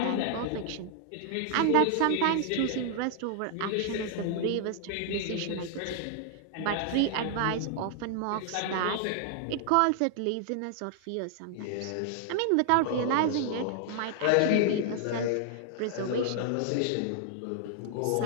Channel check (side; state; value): both; different; correlation 0.00